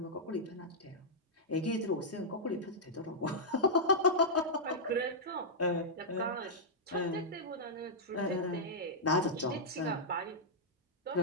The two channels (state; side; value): normal; both; correlation -0.08